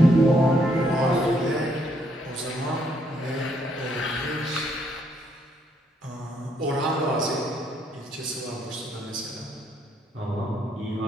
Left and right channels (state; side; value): normal; both; correlation 0.72